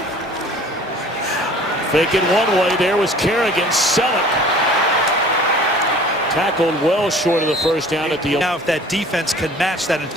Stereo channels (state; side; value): normal; both; correlation 0.48